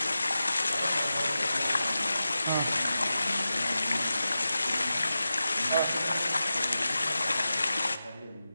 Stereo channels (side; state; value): both; inverted; correlation -0.92